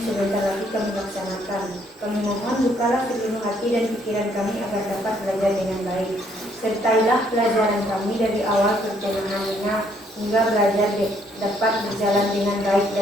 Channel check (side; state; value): both; normal; correlation 0.68